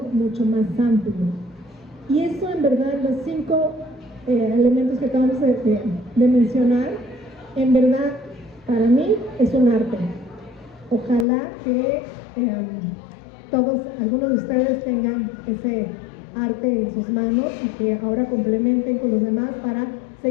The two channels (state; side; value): drops out; right; at 11.2 s